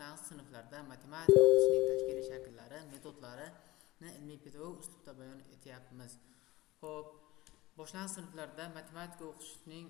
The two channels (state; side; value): quieter; right; 19.3 dB